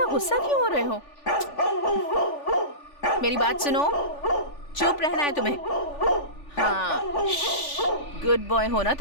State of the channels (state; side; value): late; right; 3.4 ms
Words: गुस्सा क्यों हो रहे हो? मेरी बात सुनो, चुप रहना है तुम्हें। हाँ, गुड बॉय हो ना